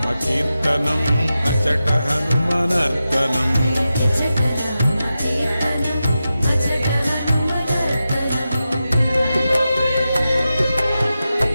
కీర్తనం అచట హనుమనర్తనం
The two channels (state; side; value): inverted; both; correlation -0.91